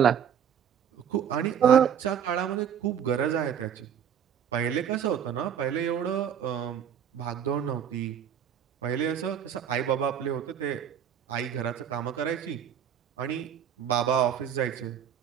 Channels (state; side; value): quieter; left; 8.7 dB